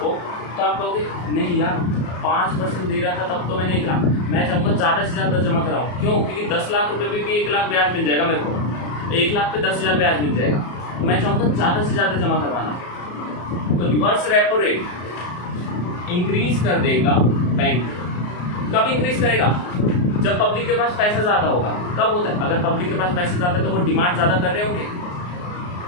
तो आप कहोगे नहीं यार 5% दे रहा था तब तो मैंने 1 लाख, मैं चाहूँगा ज़्यादा से ज़्यादा जमा कराऊँ। क्यों, क्योंकि 10 लाख रुपये भी 1 लाख ब्याज मिल जाएगा मेरे को, 1 लाख पे 10,000 ब्याज मिल जाएगा, मैं चाहूँगा ज़्यादा से ज़्यादा जमा करवाना। तो रिवर्स रेपो रेट इंक्रीज कर देगा बैंक। कब इंक्रीज करेगा, जब पब्लिक के पास पैसा ज़्यादा होगा। कब होता है, अगर पब्लिक के पास पैसा ज़्यादा है तो वो डिमांड ज़्यादा कर रहे होंगे,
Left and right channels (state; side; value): late; right; 34 ms